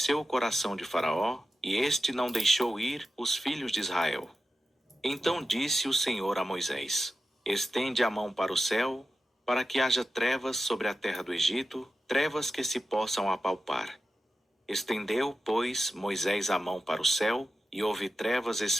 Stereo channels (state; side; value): normal; both; correlation 0.92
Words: o coração de Faraó, e este não deixou ir os filhos de Israel. Então disse o Senhor a Moisés: Estende a mão para o céu, para que haja trevas sobre a terra do Egito, trevas que se possam apalpar. Estendeu, pois, Moisés a mão para o céu, e houve trevas